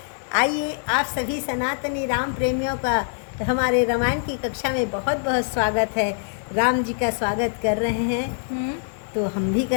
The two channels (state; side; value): silent; right; digital silence